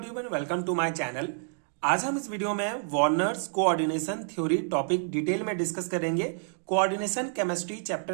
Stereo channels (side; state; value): left; silent; digital silence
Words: welcome to my channel. आज हम इस वीडियो में Werner's coordination theory topic detail में डिस्कस करेंगे। कोऑर्डिनेशन केमिस्ट्री